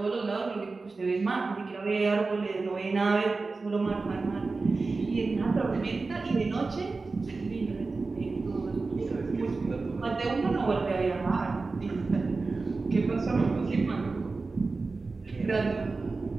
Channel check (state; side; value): quieter; left; 3.9 dB